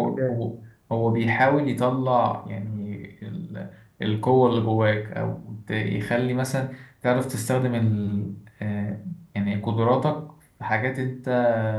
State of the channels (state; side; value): identical; both; correlation 1.00